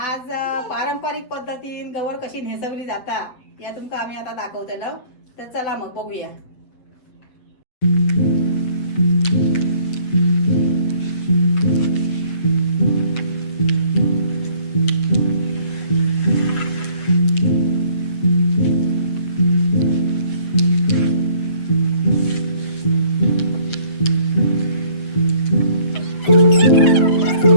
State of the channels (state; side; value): late; right; 7.9 ms